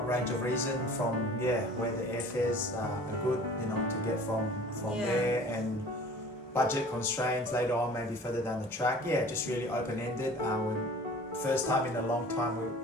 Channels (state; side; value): normal; both; correlation 0.45